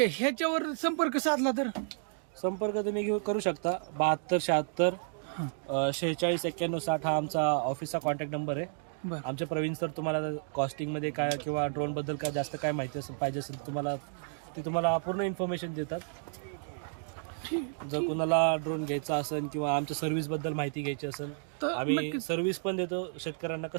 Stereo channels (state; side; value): silent; left; digital silence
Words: ह्याच्यावर संपर्क साधला तर संपर्क तुम्ही करू शकता. 72 76 46 91 60 हा आमचा ऑफिसचा कॉन्टॅक्ट नंबर आहे. आमचे प्रवीण सर तुम्हाला कॉस्टिंग मध्ये काय किंवा ड्रोन बद्दल काय जास्त काय माहिती पाहिजे असेल तुम्हाला पूर्ण इन्फॉर्मेशन देतात. जर कुणाला ड्रोन घ्यायचा असेल किंवा आमच्या सर्व्हिस बद्दल माहिती घ्यायची असेल तर आम्ही सर्व्हिस पण देतो. शेतकऱ्यांना